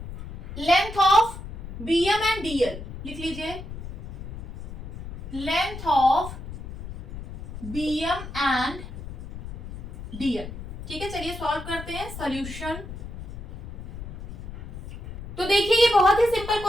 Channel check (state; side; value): noise; left; rumble, 11 dB below the sound